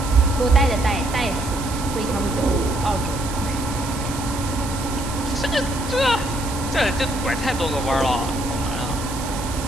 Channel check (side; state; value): right; noise; hiss, 11 dB below the sound